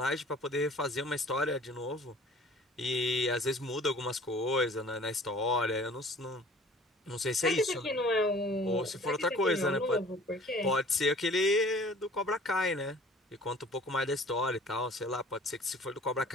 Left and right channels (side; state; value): both; normal; correlation 0.49